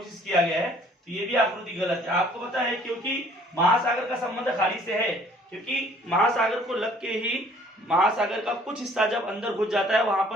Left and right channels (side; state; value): both; normal; correlation 0.57